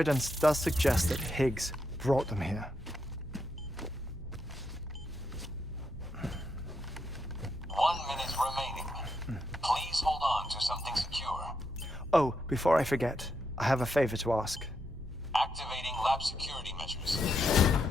does suggest that Higgs brought them here. 1 minute remaining. Please hold on to something secure. Oh, before I forget, I have a favor to ask. Activating lab security measures.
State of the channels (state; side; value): normal; both; correlation 0.81